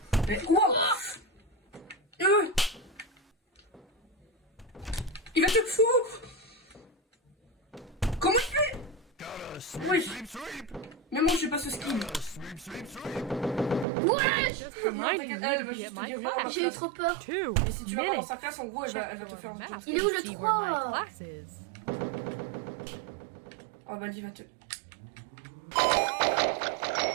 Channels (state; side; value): drops out; left; at 13.9 s